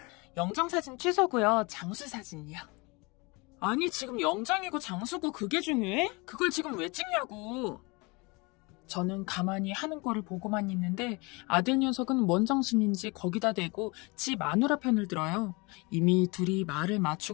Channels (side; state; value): right; quieter; 27.1 dB